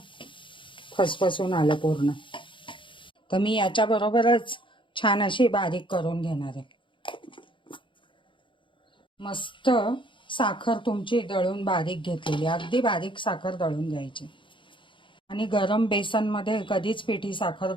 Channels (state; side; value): late; right; 0.24 ms